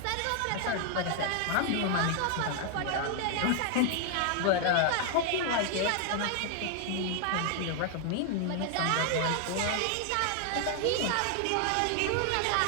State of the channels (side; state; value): both; different; correlation 0.00